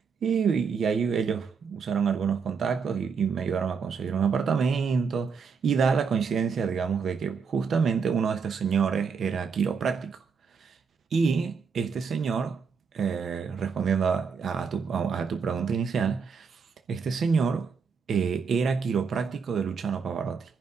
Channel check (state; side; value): quieter; left; 5.8 dB